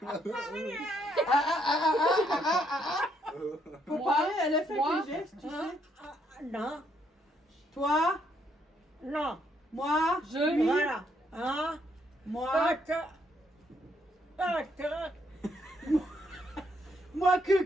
Faut Moi, parler, elle a fait moi, des gestes, tu Ah, sais. ah, non, Toi, non, moi, Je. lui, voilà. Hein? moi, moi que,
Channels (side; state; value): both; normal; correlation 0.73